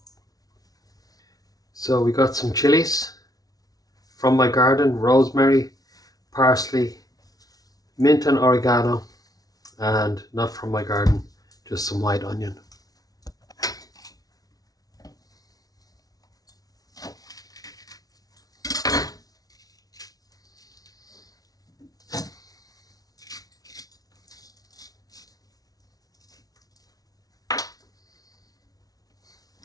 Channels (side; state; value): right; late; 0.18 ms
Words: So we got some chilies from my garden, rosemary, parsley, mint and oregano, and not from my garden, just some white onion.